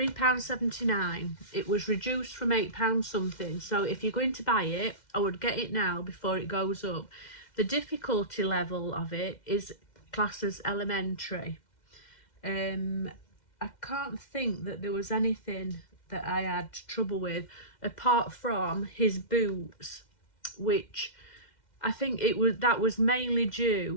It was reduced from £8 something, so if you're going to buy it, I would get it now before it goes up. The difficulty level of it is classed as elementary. I can't think that there was anything that I had trouble with apart from his boots, which I think that was mainly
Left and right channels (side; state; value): right; late; 2.1 ms